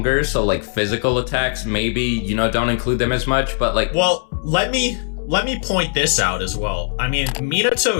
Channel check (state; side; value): silent; right; 65 dB below the other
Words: so like physical attacks maybe, you know, don't include them as much, but like. Well, let me point this out as well. I mean,